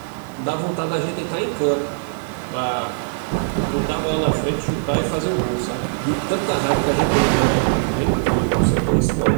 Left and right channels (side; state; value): left; silent; 65 dB below the other